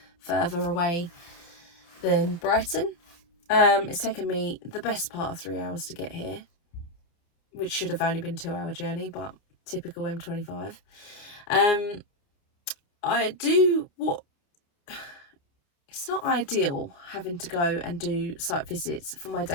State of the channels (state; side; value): late; right; 29 ms